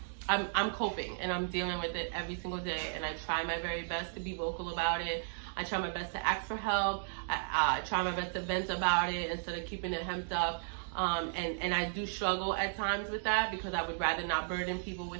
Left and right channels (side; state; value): left; silent; digital silence